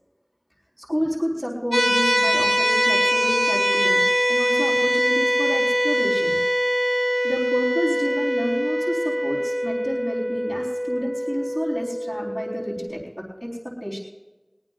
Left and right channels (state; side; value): identical; both; correlation 1.00